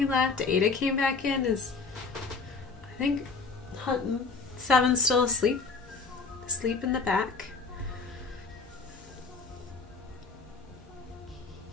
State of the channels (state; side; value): quieter; right; 4.5 dB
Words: left. Ada came back in. Is I think Hutton 7's still asleep. Asleep in the back.